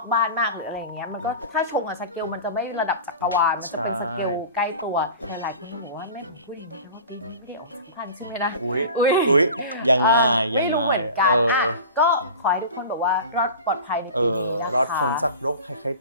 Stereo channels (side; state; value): both; inverted; correlation -0.36